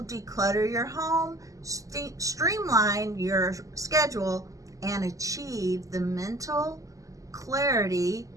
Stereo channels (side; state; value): left; late; 0.16 ms